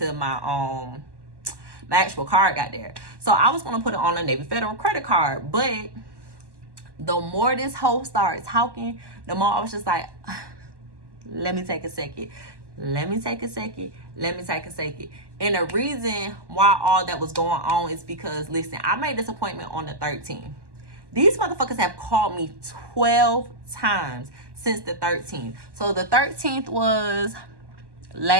my actual card got there. So I was gonna put it on a Navy Federal credit card, but the more this hoe started talking, the more I was just like, let me take a second. Let me take a second. Let me take a second. And the reason why all that was going on is because, listen, I made this appointment on the 13th. These motherfuckers have called me 12 times since the 13th. So the 13th was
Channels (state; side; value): late; left; 1.1 ms